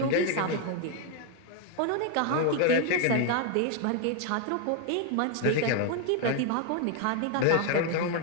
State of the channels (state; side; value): different; both; correlation 0.00